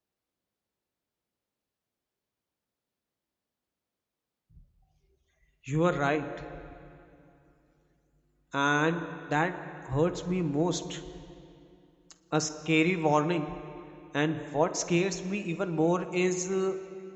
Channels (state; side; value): identical; both; correlation 1.00